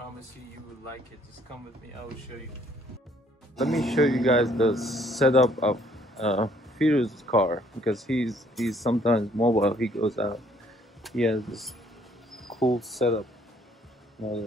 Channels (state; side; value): normal; both; correlation 0.63